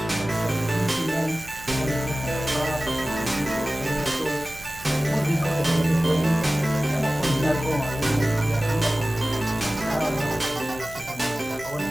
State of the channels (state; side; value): noise; right; hum, 20 dB below the sound